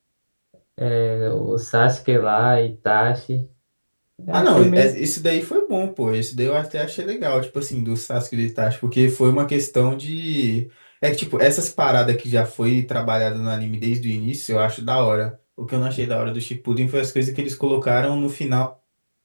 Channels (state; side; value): inverted; both; correlation -1.00